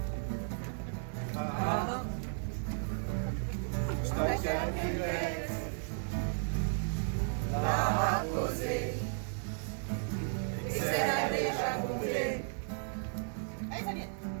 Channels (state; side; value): silent; left; digital silence